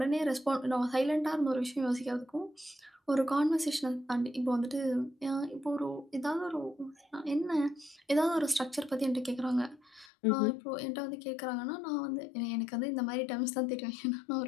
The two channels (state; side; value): drops out; right; at 10.1 s